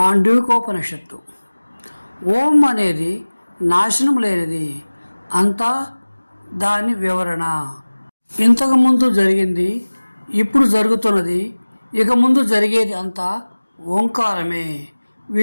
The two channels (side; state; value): both; inverted; correlation -1.00